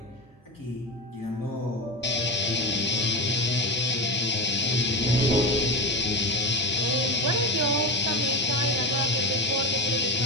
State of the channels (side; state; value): both; normal; correlation 0.22